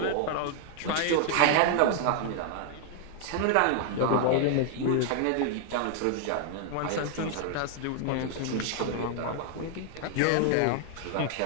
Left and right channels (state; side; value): different; both; correlation 0.00